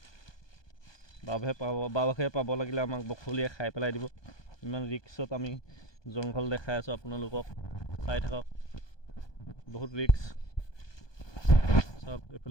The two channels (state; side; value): late; right; 1.2 ms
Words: বাঘে পাব লাগিলে আমাক বখলিয়াই খাই পেলাই দিব ইমান ৰিক্সত আমি জংঘল দেখাই আছোঁ আপোনালোকক চাই থাকক বহুত ৰিক্স চাওক